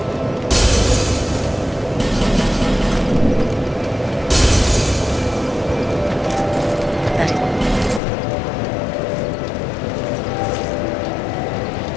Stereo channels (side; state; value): right; drops out; at 8.0 s